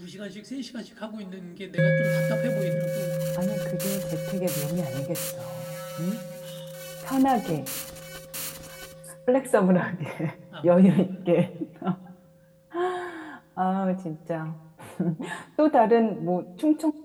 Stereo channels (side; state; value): both; identical; correlation 1.00